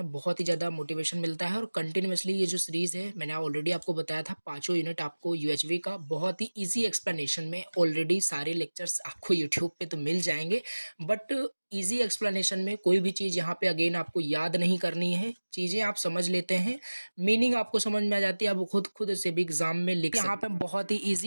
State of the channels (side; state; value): both; inverted; correlation -1.00